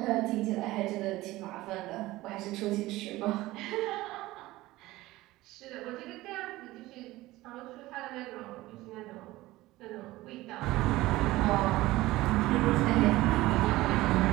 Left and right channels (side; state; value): left; quieter; 18.1 dB